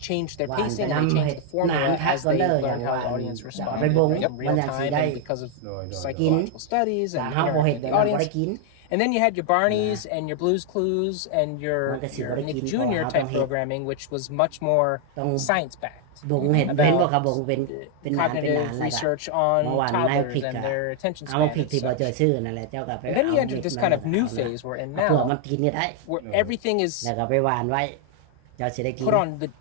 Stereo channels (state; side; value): different; both; correlation 0.00